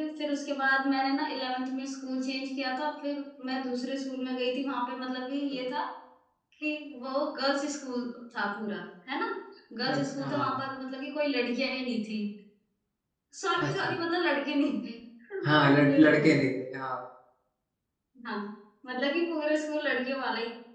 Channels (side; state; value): both; identical; correlation 1.00